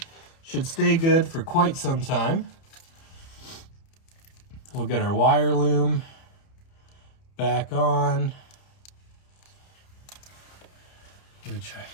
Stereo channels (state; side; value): late; right; 30 ms